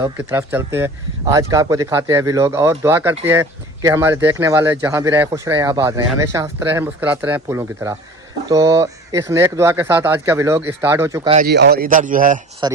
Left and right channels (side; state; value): both; normal; correlation 0.41